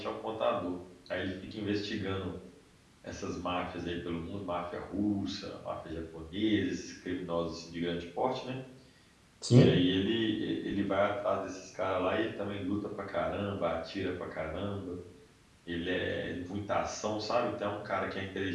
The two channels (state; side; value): identical; both; correlation 1.00